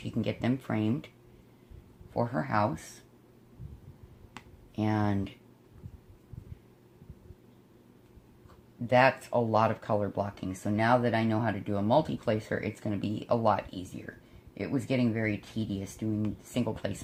can get them framed for her house. And that's a lot of color blocking. So now that I know how to do a multi-placer, it's going to be a lot easier. It was getting very tedious doing single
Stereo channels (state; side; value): identical; both; correlation 1.00